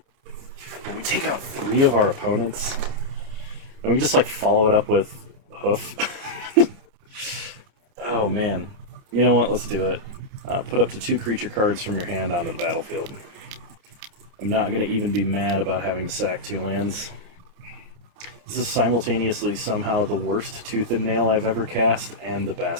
But we take out 3 of our opponents. And we can just like follow it up with Hoof. Oh man. You know what? Let's do it. Put up to 2 creature cards from your hand onto the battlefield. I'm not going to even be mad about having to sack 2 lands. This is simultaneously somehow the worst Tooth and Nail I've ever cast, and the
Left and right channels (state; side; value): late; left; 29 ms